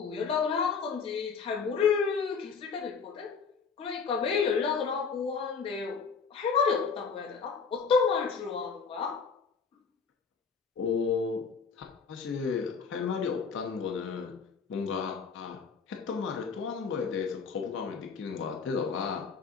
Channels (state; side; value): quieter; right; 5.6 dB